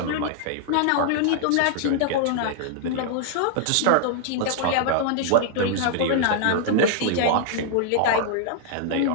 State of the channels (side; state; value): both; different; correlation -0.01